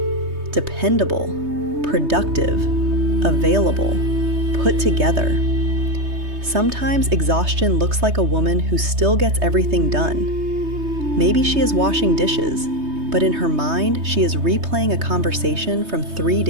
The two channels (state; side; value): late; left; 3.2 ms